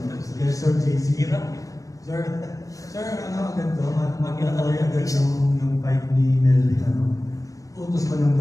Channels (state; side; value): late; right; 0.16 ms